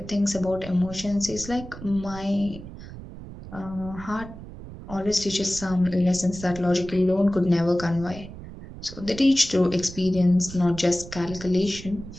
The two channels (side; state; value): right; noise; rumble, 13 dB below the sound